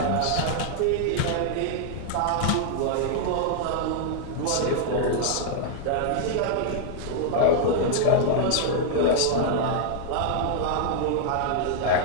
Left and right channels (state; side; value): different; both; correlation -0.01